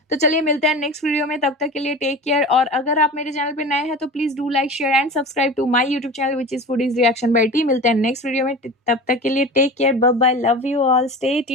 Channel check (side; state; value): both; normal; correlation 0.33